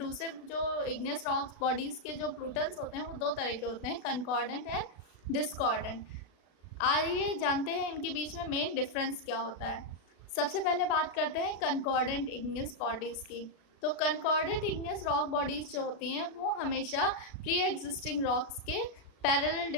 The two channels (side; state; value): right; late; 36 ms